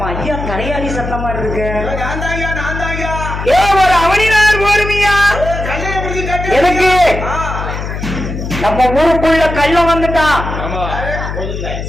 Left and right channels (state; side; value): noise; left; hum, 6 dB below the sound